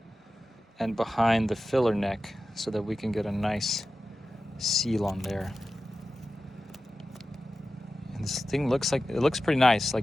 and behind the filler neck so that we can get a nice seal on there. And this thing looks pretty nice.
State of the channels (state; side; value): normal; both; correlation 0.94